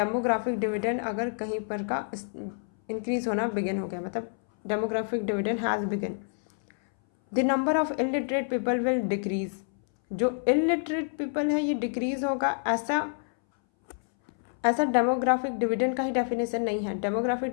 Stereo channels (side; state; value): right; silent; 59 dB below the other